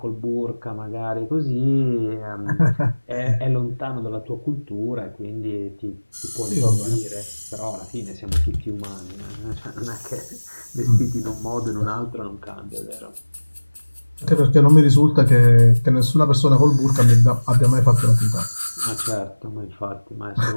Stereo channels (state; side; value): inverted; both; correlation -1.00